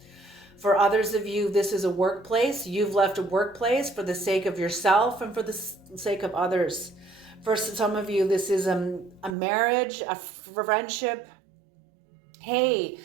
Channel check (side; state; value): left; drops out; at 9.3 s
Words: For others of you, this is a workplace. You've left a workplace for the sake of yourself and for the sake of others. For some of you, this is a marriage, a friendship. Hey,